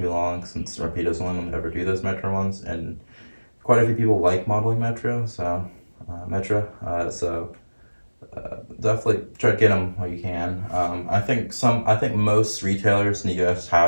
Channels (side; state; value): both; inverted; correlation -1.00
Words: long, since Rapido's the only one to ever do those Metro ones, and quite a few people like modeling Metro, so definitely try to get them while you can. I think most retailers in the US